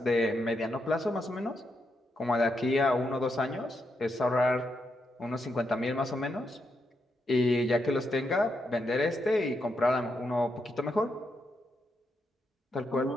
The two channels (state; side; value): normal; both; correlation 0.82